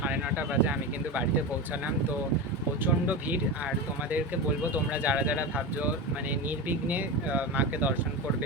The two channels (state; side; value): normal; both; correlation 0.21